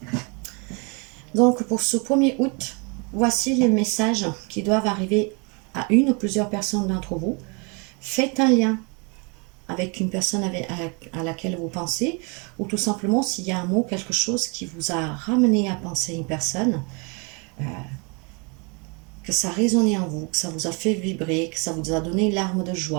Donc, pour ce 1er août, voici les messages qui doivent arriver à une ou plusieurs personnes d'entre vous. Faites un lien avec une personne à laquelle vous pensez, ou tout simplement s'il y a un mot, quelque chose qui vous a ramené à penser à une personne, que ça a résonné en vous, que ça vous a fait vibrer, que ça vous a donné une larme de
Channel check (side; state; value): left; quieter; 32.3 dB